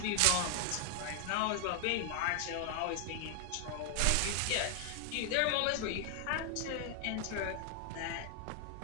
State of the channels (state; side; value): different; both; correlation 0.00